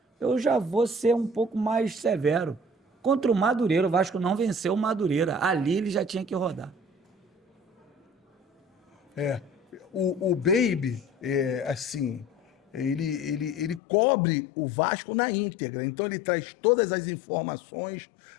Eu já vou ser um pouco mais severo. Contra o Madureira, o Vasco não venceu o Madureira. Ali ele já tinha que rodar. O Baby, assim, ele cobre o Vasco na íntegra. Então ele traz todas as informações,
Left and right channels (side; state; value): right; drops out; at 13.8 s